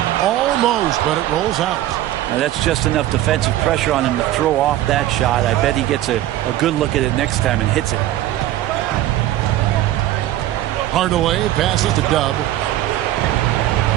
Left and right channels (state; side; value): quieter; left; 14.0 dB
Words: Almost, but it rolls out. Now that's just enough defensive pressure on him to throw off that shot. I bet he gets a good look at it next time and hits it. Hardaway passes to Dub.